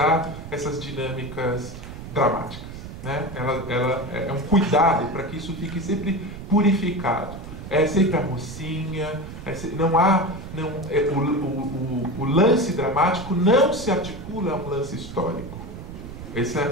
essas dinâmicas dramáticas, né? Ela é um cuidado para que isso fique sempre purificado. É sempre a mocinha, o lance dramático não se articula a um lance histórico.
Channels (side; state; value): right; noise; rumble, 11 dB below the sound